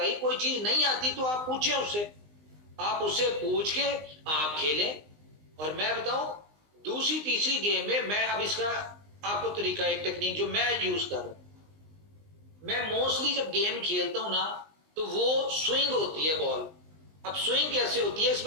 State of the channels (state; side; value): late; left; 19 ms